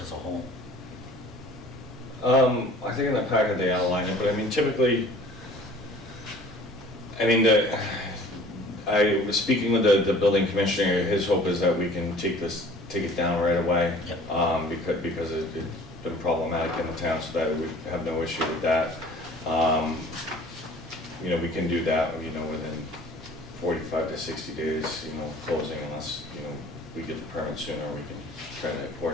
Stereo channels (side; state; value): both; normal; correlation 0.49